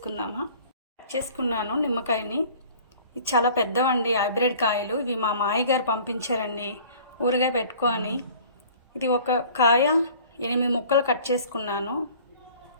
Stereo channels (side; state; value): both; inverted; correlation -0.49